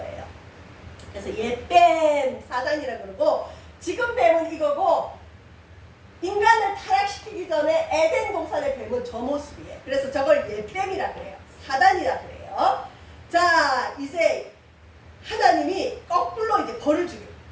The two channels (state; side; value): identical; both; correlation 1.00